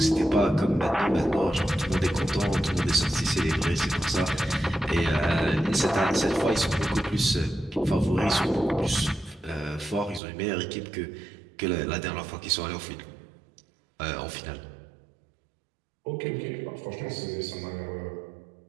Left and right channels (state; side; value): drops out; left; at 10.2 s